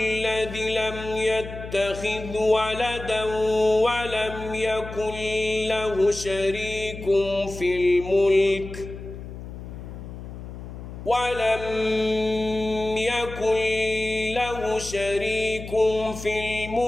لم يتخذ ولدا ولم يكن له شريك في الملك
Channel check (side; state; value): left; noise; hum, 11 dB below the sound